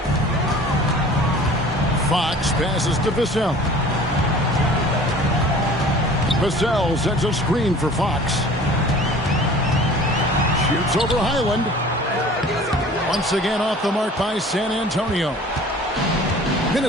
Fox passes to Vassell. Vassell sets a screen for Fox. Shoots over Highland. Once again off the mark by San Antonio.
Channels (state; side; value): normal; both; correlation 0.46